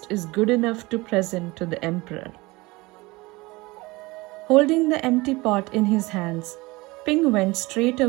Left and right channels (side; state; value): left; quieter; 22.5 dB